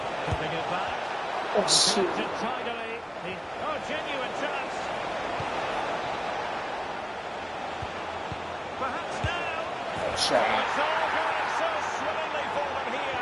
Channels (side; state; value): both; identical; correlation 1.00